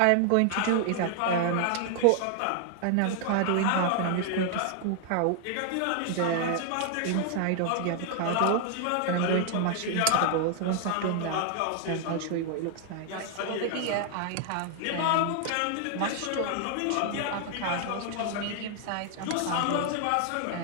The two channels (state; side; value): different; both; correlation 0.00